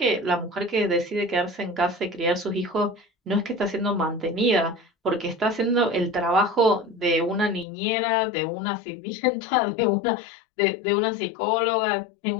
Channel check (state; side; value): drops out; right; at 7.7 s